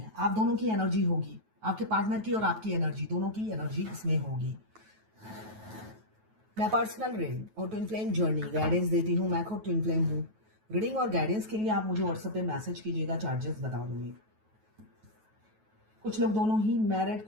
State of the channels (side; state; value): left; late; 9.3 ms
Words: आप दोनों की एनर्जी होगी, आपके पार्टनर की और आपकी एनर्जी, दोनों की एनर्जी इसमें होगी। मैं पर्सनल रीडिंग और ट्विन फ्लेम जर्नी गाइडेंस देती हूँ, मैं खुद ट्विन फ्लेम हूँ। रीडिंग और गाइडेंस के लिए आप मुझे व्हाट्सएप पे मैसेज कीजिएगा, चार्जेस बता दूंगी। कुछ लोग दोनों ही मैरिड,